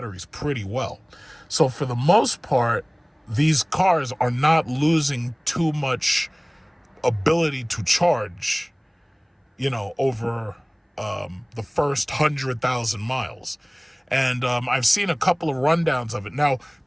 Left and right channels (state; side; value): identical; both; correlation 1.00